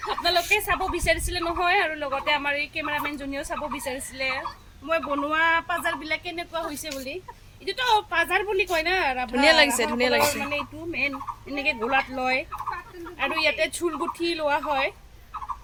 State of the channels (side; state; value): both; identical; correlation 1.00